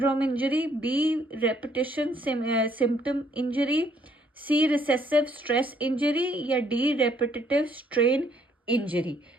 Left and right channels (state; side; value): normal; both; correlation 0.66